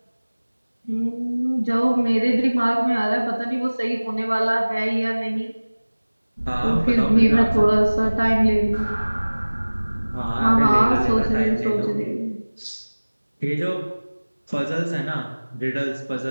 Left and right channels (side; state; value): both; inverted; correlation -1.00